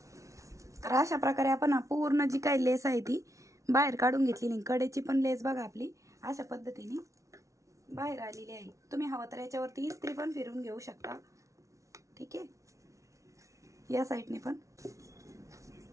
तर अशा प्रकारे आपण पूर्ण जी काही लेस आहे ती बाहेर काढून घेतलेली। कडेची पण लेस बघा आपली अशा पद्धतीने बाहेर आलेली आहे। तुम्ही हवं तर याच्यावरती इस्त्री पण फिरून घेऊ शकता। ठीक आहे, या साईडने पण।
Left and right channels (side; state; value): left; late; 0.15 ms